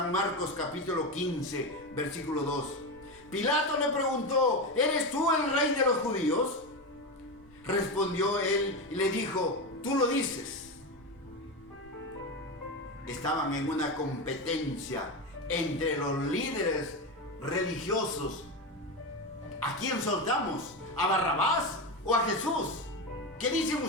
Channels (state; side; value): noise; left; rumble, 27 dB below the sound